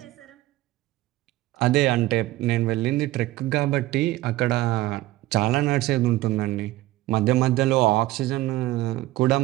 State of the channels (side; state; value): left; quieter; 16.9 dB